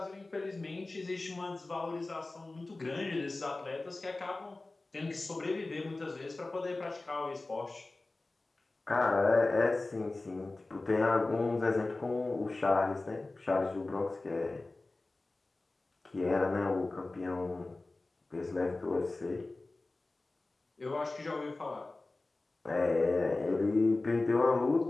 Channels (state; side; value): quieter; right; 3.1 dB